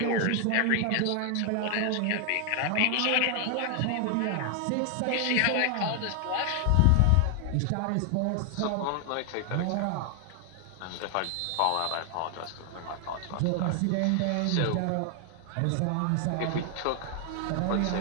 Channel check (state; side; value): different; both; correlation 0.00